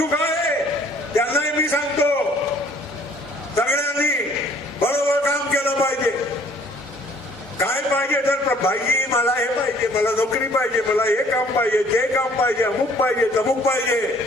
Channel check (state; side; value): normal; both; correlation 0.58